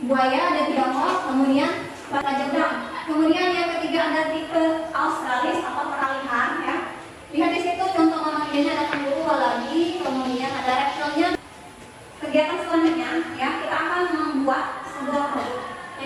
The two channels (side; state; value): both; identical; correlation 1.00